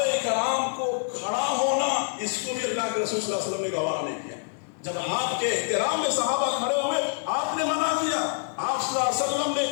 کرام کو کھڑا ہونا، اس کو بھی اللہ کے رسول صلی اللہ علیہ وسلم نے گوارا نہیں کیا. جب آپ کے احترام میں صحابہ کھڑے ہوئے آپ نے منع کیا. آپ صلی اللہ علیہ وسلم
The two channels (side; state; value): right; silent; digital silence